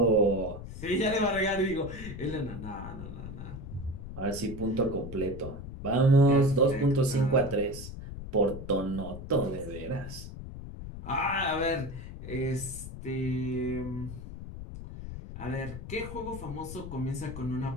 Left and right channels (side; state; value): left; noise; rumble, 10 dB below the sound